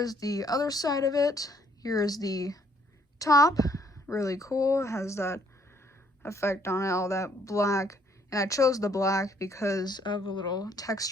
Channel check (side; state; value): both; normal; correlation 0.66